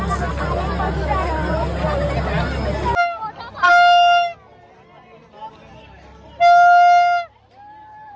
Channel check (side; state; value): both; identical; correlation 1.00